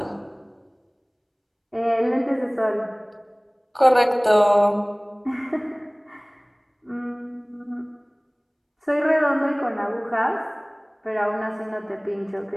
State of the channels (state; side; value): identical; both; correlation 1.00